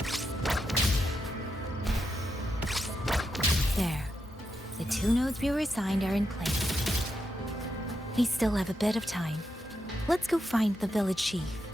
There. The 2 nodes we were assigned are in place. We still have a bit of time. Let's go find the village chief.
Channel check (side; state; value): both; normal; correlation 0.85